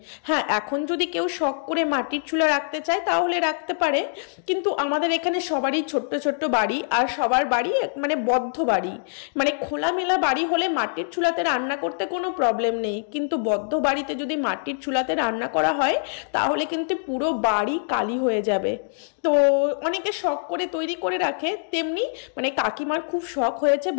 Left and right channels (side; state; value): right; silent; digital silence